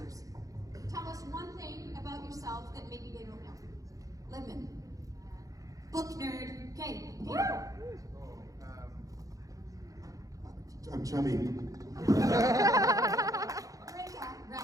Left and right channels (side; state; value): left; late; 0.17 ms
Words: Tell us one thing about yourself that maybe they don't know. Libman. Book nerd. Okay. I'm chubby.